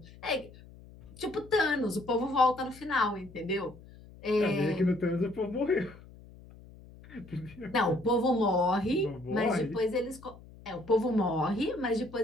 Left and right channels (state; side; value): noise; left; hum, 20 dB below the sound